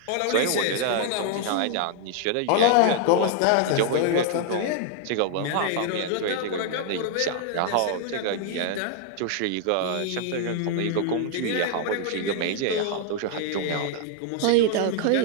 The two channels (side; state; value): both; different; correlation 0.00